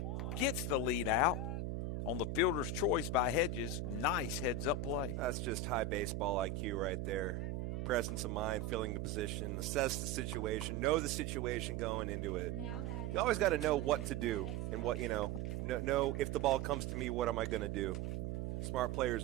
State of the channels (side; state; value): right; noise; hum, 3 dB below the sound